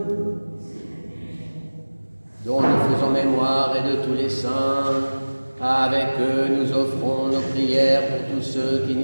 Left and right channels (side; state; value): both; inverted; correlation -1.00